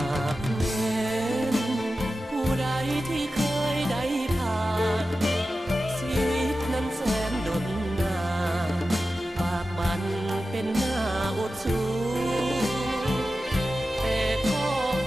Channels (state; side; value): normal; both; correlation 0.93